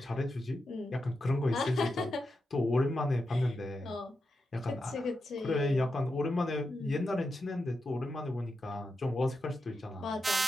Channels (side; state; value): both; normal; correlation 0.88